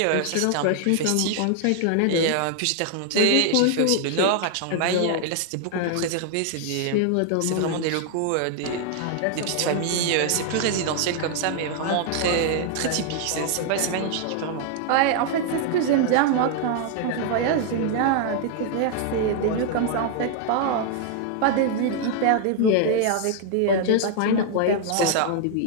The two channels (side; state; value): both; different; correlation 0.00